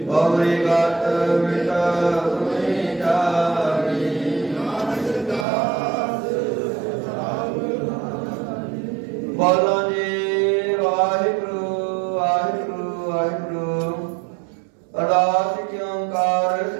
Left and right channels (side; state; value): left; drops out; at 5.5 s